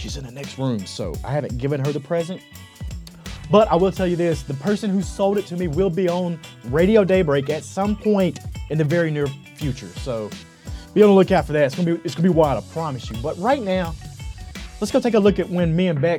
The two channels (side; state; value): both; identical; correlation 1.00